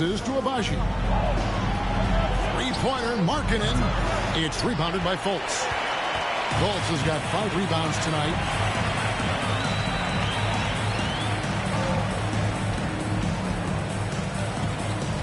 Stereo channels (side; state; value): both; identical; correlation 1.00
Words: to Abaji. Three-pointer, Markkanen. It's rebounded by Fultz. Fultz has got 5 rebounds tonight.